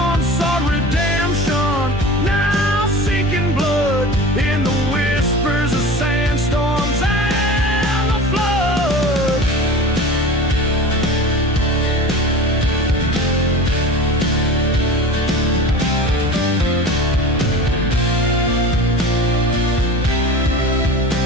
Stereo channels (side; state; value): both; normal; correlation 0.35